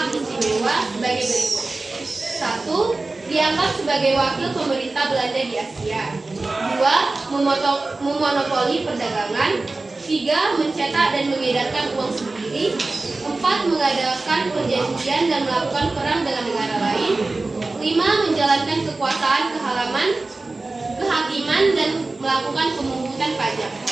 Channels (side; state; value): left; quieter; 3.3 dB